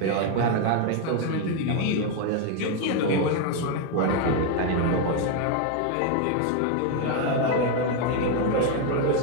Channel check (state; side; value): different; both; correlation 0.01